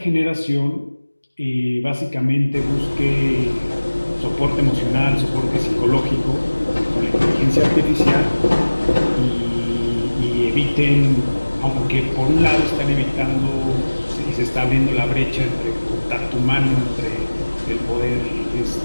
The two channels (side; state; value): both; inverted; correlation -1.00